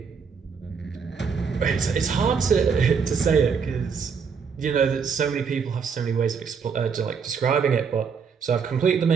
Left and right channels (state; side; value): quieter; left; 6.1 dB